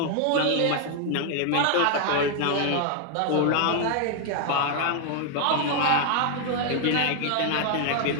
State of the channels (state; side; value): different; both; correlation 0.00